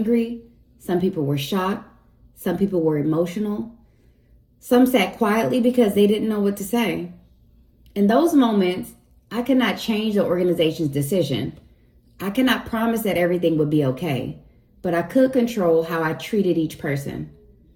some people were shocked, some people were emotional. Some sat quietly because they didn't know what to say. In those moments, I could not change the organization's decision. I cannot promise that everything would be okay, but I could control how I treated each person.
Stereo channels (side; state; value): both; identical; correlation 1.00